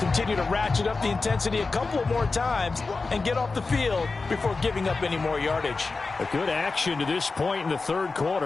continue to ratchet up the intensity a couple of more times and get off the field before giving up any more yardage. A good action to this point in the 3rd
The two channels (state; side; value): quieter; right; 4.0 dB